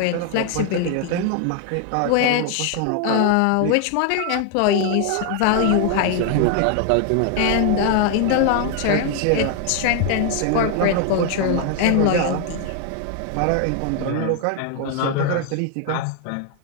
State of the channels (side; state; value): both; different; correlation 0.00